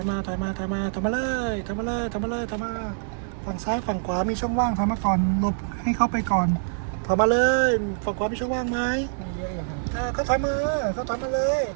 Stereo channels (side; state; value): left; silent; digital silence